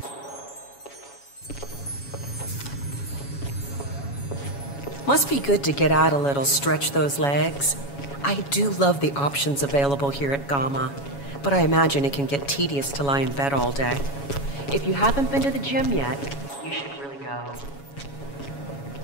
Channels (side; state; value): right; late; 7.2 ms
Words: Must be good to get out a little, stretch those legs. I do love the options available here at Gamma, but I imagine it can get tedious to lie in bed all day. If you haven't been to the gym yet, you should really go.